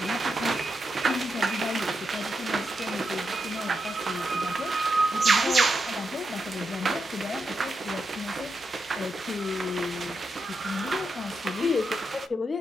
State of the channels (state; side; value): normal; both; correlation 0.85